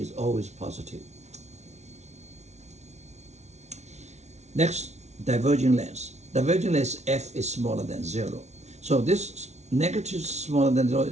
always positive. Next, diverging lens. Diverging lens F is smaller than 0. So this negative smaller than 0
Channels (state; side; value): late; left; 0.32 ms